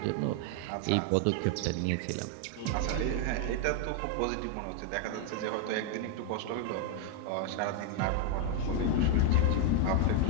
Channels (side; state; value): both; different; correlation 0.00